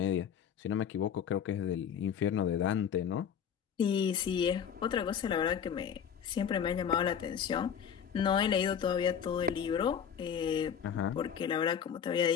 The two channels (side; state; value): right; quieter; 8.1 dB